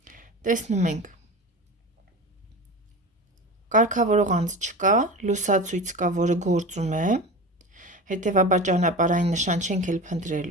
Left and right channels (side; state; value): both; normal; correlation 0.30